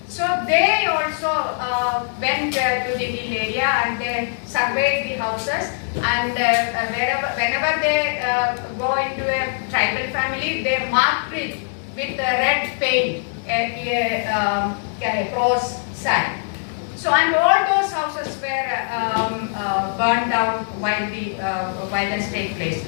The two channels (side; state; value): right; silent; digital silence